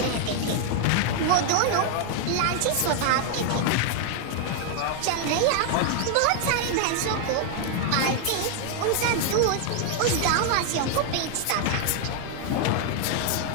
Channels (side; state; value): both; different; correlation 0.00